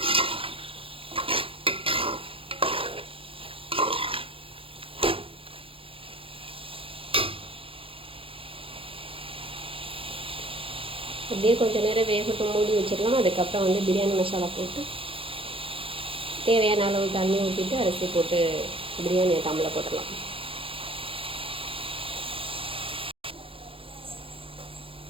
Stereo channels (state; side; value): late; left; 0.26 ms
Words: அப்படியே கொஞ்சம் நேரம் வேகட்டும், மூடி வச்சிடலாம். அதுக்கப்புறம் வந்து பிரியாணி மசாலா போட்டு தேவையான அளவு தண்ணி ஊற்றிட்டு அரிசி போட்டு பிரியாணியை தம்மில் போட்டுடலாம்.